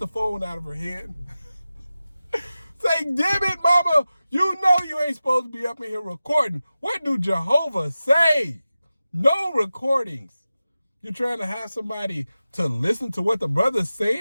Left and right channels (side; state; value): both; inverted; correlation -0.94